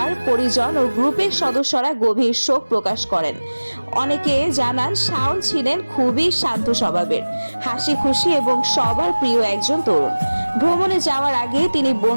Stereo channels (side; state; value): both; inverted; correlation -1.00